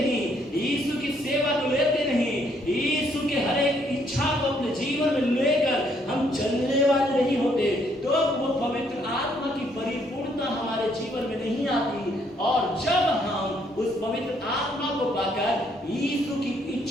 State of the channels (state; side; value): normal; both; correlation 0.69